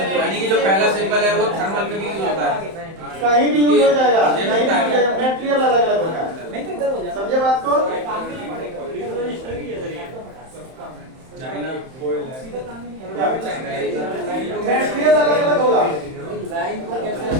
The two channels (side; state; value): left; late; 31 ms